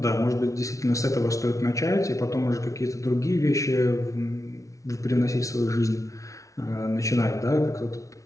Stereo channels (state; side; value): late; right; 0.16 ms